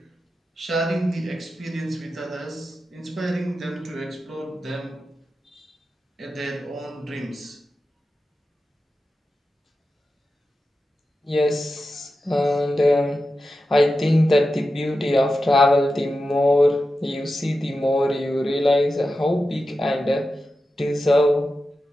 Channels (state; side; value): normal; both; correlation 0.91